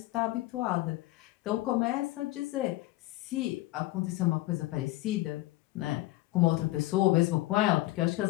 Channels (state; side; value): quieter; right; 18.3 dB